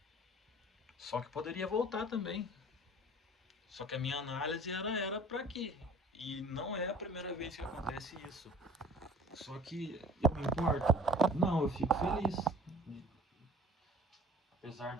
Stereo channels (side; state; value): both; normal; correlation 0.46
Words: Só que poderia voltar também. Só que a minha análise era para aqui. E não é a primeira vez que acontece isso. Só que eu me importo? Não, eu fico feliz. Apesar